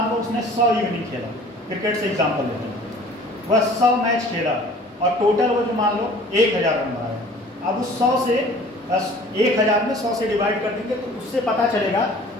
लो उसने 100 इनिंग खेला, क्रिकेट से एग्जाम्पल लेते हैं, वह 100 मैच खेला और टोटल वो जो मान लो 1000 रन बनाया। अब उस 100 से 1000 में 100 से डिवाइड कर देंगे तो उससे पता चलेगा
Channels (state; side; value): normal; both; correlation 0.48